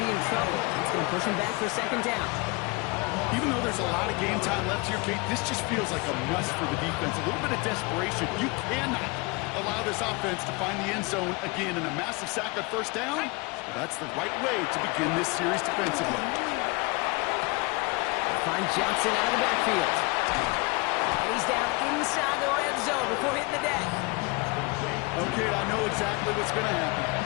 be in trouble. It's going to push him back for 2nd down. Even though there's a lot of game time left here, Kate, this just feels like a must for the defense. A little bit of desperation. You cannot allow this offense to find the end zone again in a massive sack on 1st down. That's the right way to begin this series defensively. Find Johnson out of the backfield. And he's down inside the red zone before hitting the deck. Okay, I know exactly what's going to happen.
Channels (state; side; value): quieter; right; 27.2 dB